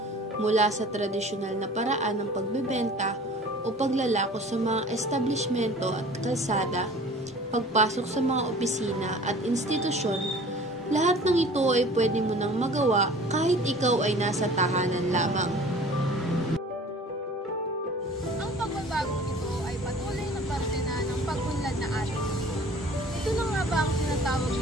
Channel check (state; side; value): normal; both; correlation 0.46